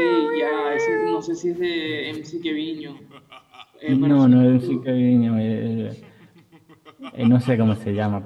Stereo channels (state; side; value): identical; both; correlation 1.00